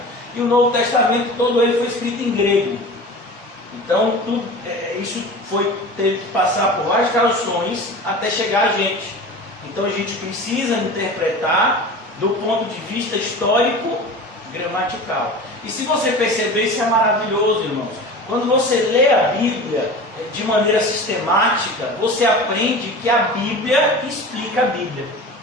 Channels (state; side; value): normal; both; correlation 0.35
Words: e o Novo Testamento todo ele foi escrito em grego. Então isso teve que passar por várias traduções até chegar a gente. Então a gente precisa interpretar do ponto de vista histórico gramatical. E se você perceber, isso é maravilhoso, irmãos. Quando você lê a Bíblia de maneira sistemática, você aprende que a Bíblia explica a Bíblia.